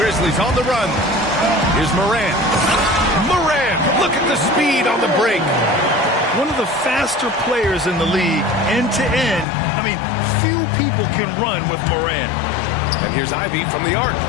on the run. Here's Morant. Morant! Look at the speed on the break. One of the faster players in the league, end to end. I mean, few people can run with Morant. And here's Ivy from the arc.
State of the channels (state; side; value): drops out; right; at 9.5 s